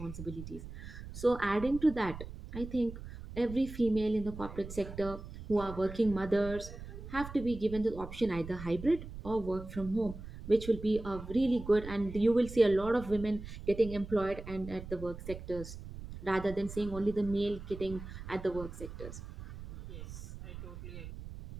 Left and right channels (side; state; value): right; noise; rumble, 11 dB below the sound